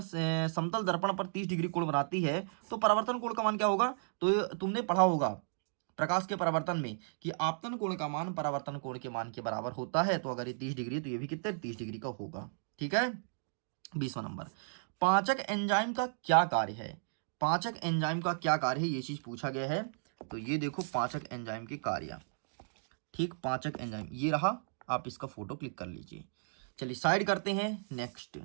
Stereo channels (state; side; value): silent; left; digital silence